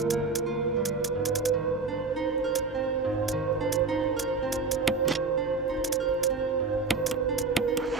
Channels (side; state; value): left; quieter; 4.2 dB